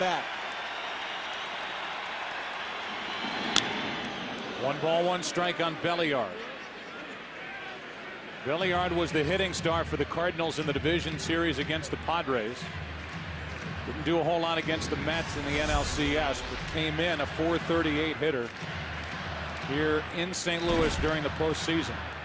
1 ball, 1 strike on Belliard. Belliard was the hitting star for the Cardinals in the division series against the Padres. Didn't do a whole lot against the Mets in the NLCS, but came in a .438 hitter here in St. Louis during the postseason.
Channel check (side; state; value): both; identical; correlation 1.00